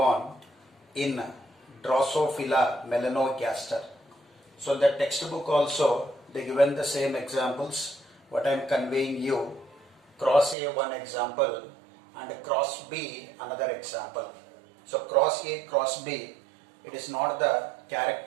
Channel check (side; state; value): left; drops out; at 10.6 s